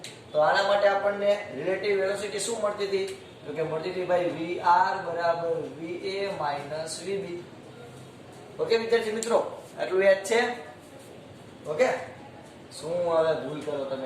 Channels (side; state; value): both; identical; correlation 1.00